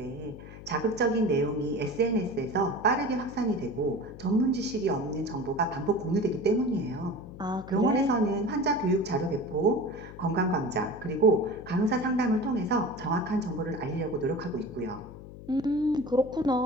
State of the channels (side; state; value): left; noise; hum, 15 dB below the sound